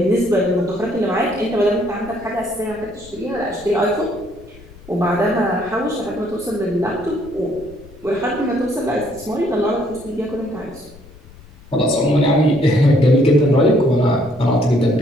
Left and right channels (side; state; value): left; noise; rumble, 22 dB below the sound